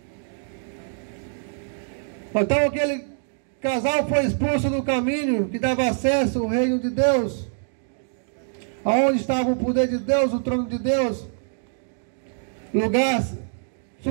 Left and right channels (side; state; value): left; silent; 62 dB below the other